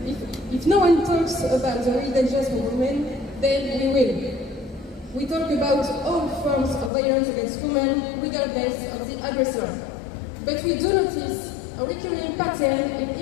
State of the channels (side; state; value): right; drops out; at 6.9 s